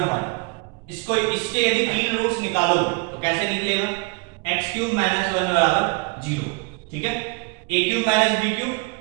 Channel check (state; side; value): quieter; left; 29.8 dB